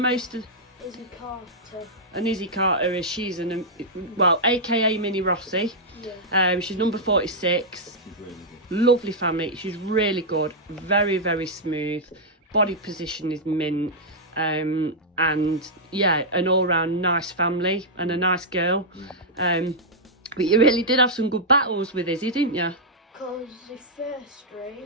of? Izzy Carter. And Izzy Carter is aka Mini Rossi. Yeah. She's number 46. She's really good. Lovely family. She's really good. Very, very smooth. Body position is mint. And yeah, an all-round nice family and a nice girl. But you really did have some good battles with Izzy, didn't you? Because the first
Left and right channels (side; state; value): both; normal; correlation -0.07